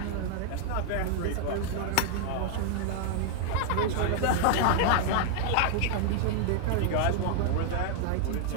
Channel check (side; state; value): both; different; correlation 0.00